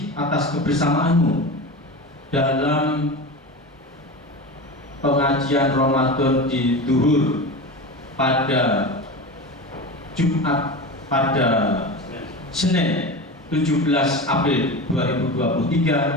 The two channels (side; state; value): both; normal; correlation 0.27